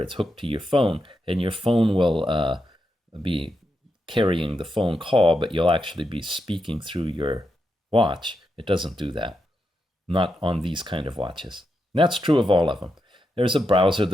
it's hooked to your phone, and your phone will be carrying the phone call, but you'll actually be speaking through your watch. It doesn't do that. Not on these kind of watches. And that's true of all of them. There's a browser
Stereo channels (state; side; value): normal; both; correlation 0.85